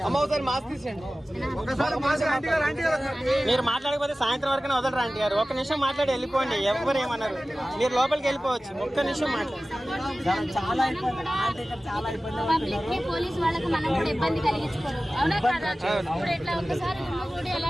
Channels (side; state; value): both; normal; correlation 0.96